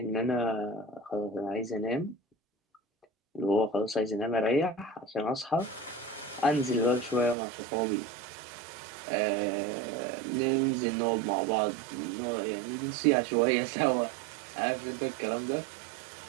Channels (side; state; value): left; drops out; at 7.4 s